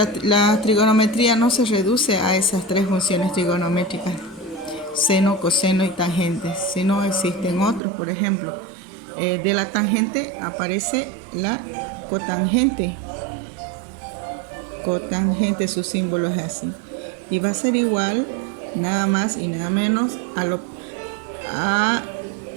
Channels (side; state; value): left; drops out; at 7.8 s